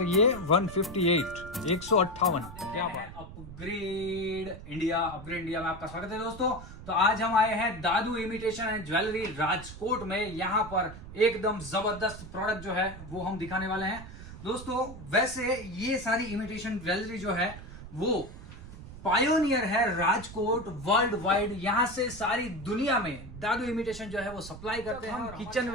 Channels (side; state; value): right; noise; rumble, 14 dB below the sound